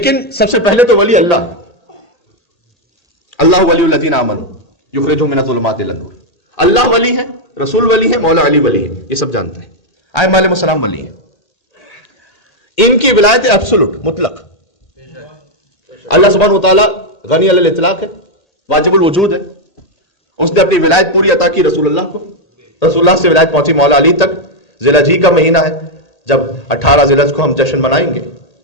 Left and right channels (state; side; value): late; right; 1.8 ms